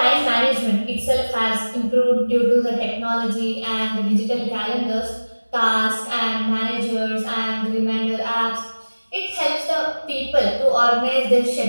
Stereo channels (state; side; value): inverted; both; correlation -1.00